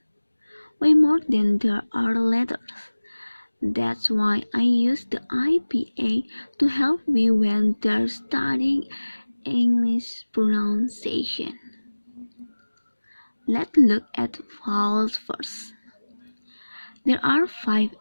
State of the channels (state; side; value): inverted; both; correlation -1.00